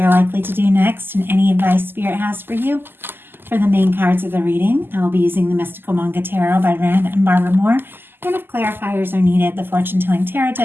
likely to do next, and any advice Spirit has for you. For the main cards of the reading, I will be using the Mystical Manga Tarot by Rand and Barbara Moore. And if clarifiers are needed, the Fortune Telling Tarot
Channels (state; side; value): late; left; 0.098 ms